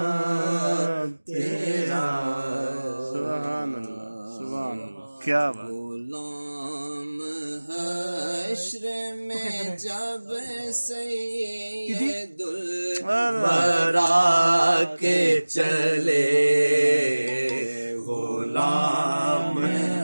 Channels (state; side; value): inverted; both; correlation -1.00